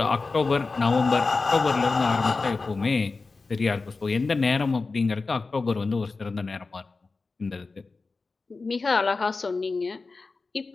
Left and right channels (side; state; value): right; quieter; 4.0 dB